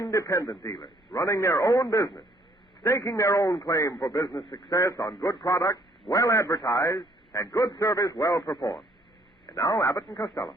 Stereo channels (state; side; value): normal; both; correlation 0.64